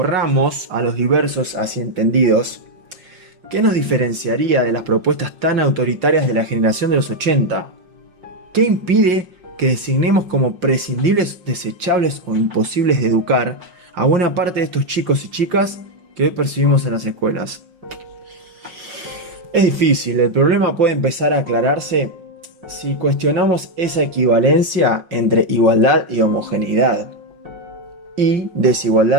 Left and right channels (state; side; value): late; left; 5.5 ms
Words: a los diversos así entendidos, ¿qué nos diferenciaría de las propuestas tan autoritarias de la generación de los 80? ¿Qué impide que designemos como prescindibles, desechables o imposibles de educar a buena parte de estos chicos y chicas que hoy percibimos en las escuelas? Es difícil, el problema puede empezar a aclararse si cuestionamos esa equivalencia entre igualdad y homogeneidad, y